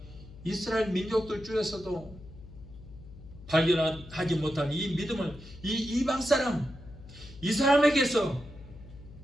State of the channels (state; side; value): noise; left; hum, 17 dB below the sound